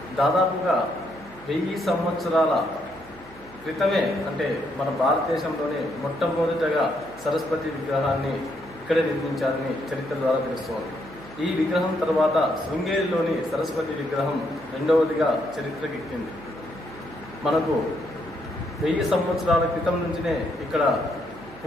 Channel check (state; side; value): noise; right; hum, 23 dB below the sound